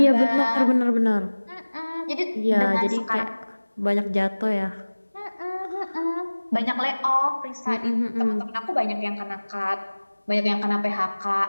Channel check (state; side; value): inverted; both; correlation -1.00